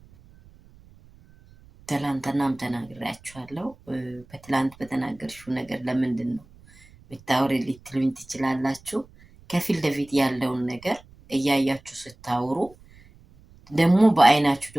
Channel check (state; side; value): noise; right; rumble, 25 dB below the sound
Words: ትላንትናም ተናግሬያችኋለሁ። በትላንት በተናገርሽው ነገር ለምንድን ነው ብታወሪ ልትሉኝ ትችላላችሁ። ከፊት ለፊት ያለውን ነገር እያያችሁ ስታወሩ ደግሞ በአይናችሁ